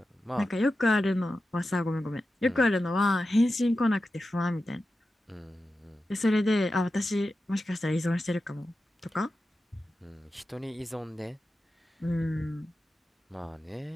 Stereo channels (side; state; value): both; normal; correlation 0.92